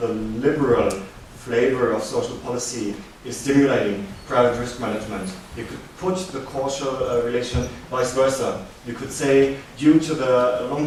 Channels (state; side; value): identical; both; correlation 1.00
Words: liberal flavor of social policy is stimulating private risk management. You could put the causal relation vice versa. You could say, due to the long